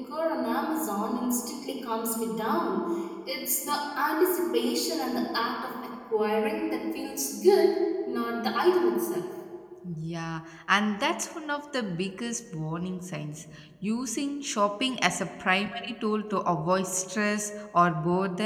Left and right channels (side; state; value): both; identical; correlation 1.00